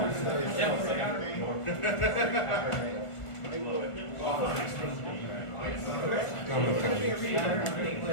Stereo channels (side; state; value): right; late; 1.5 ms